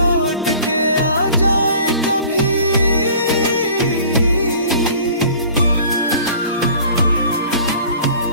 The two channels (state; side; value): inverted; both; correlation -0.48